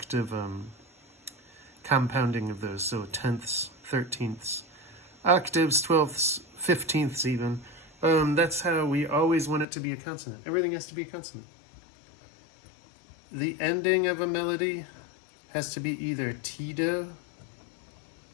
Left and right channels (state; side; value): drops out; right; at 9.7 s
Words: compounding of those, so tenths, thirteenths, octaves, twelfths, fifteenths even. That's how we always want it to be a consonant. Everything has to be a consonant. The ending of a melody has to be either T-do,